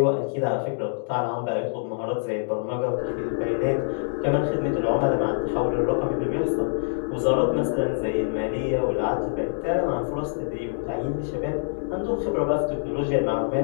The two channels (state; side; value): silent; right; digital silence